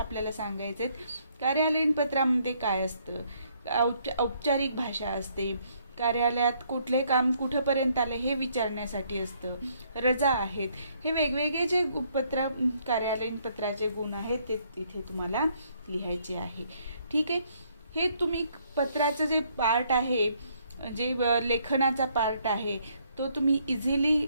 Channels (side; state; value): both; inverted; correlation -0.68